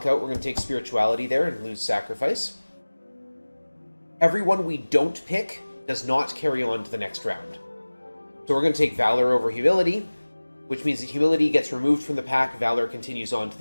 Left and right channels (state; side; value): inverted; both; correlation -1.00